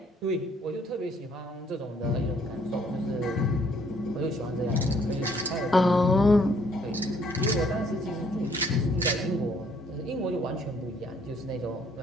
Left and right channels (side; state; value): both; normal; correlation 0.64